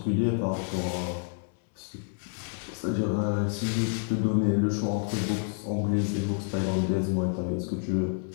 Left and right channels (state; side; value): silent; right; 59 dB below the other